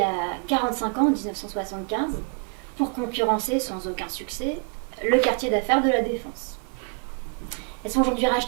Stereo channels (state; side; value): quieter; left; 37.9 dB